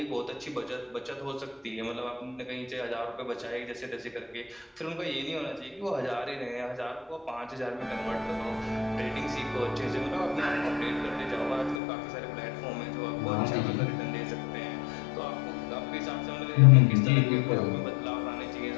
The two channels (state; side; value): drops out; right; at 11.8 s